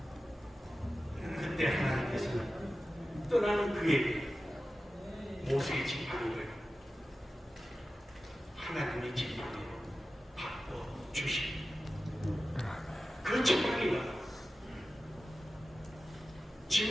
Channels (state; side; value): normal; both; correlation 0.94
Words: 그때 하나님께서는 떠나는 그에게 모세의 지팡이를 하나님의 지팡이로 바꿔주신 그 지팡이가